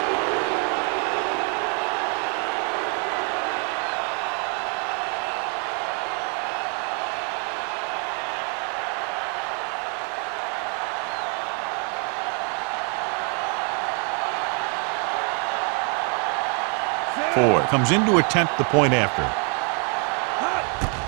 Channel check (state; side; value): quieter; left; 38.2 dB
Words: Ford comes in to attempt the point after.